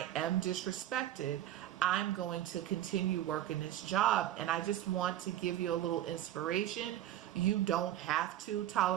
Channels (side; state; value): left; quieter; 12.8 dB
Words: am disrespected, I'm going to continue working this job. And I just want to give you a little inspiration. You don't have to